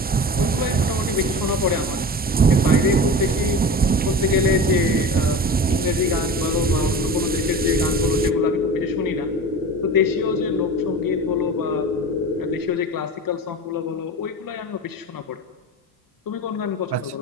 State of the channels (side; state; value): both; normal; correlation 0.32